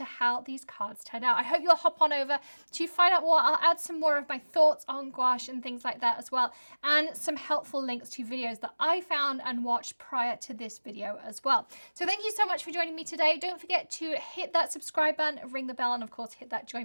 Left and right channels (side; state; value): both; inverted; correlation -1.00